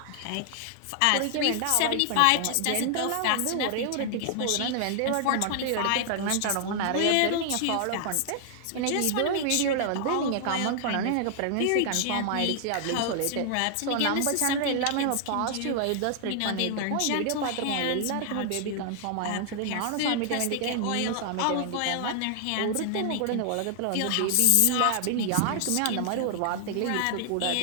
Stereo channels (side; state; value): both; different; correlation 0.00